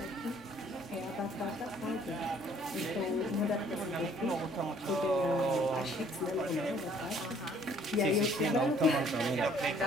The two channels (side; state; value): both; normal; correlation 0.59